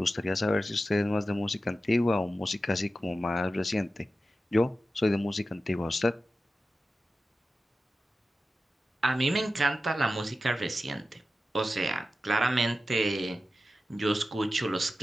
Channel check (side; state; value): both; normal; correlation 0.93